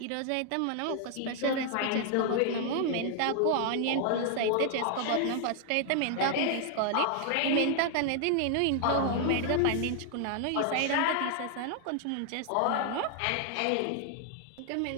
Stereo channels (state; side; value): different; both; correlation 0.00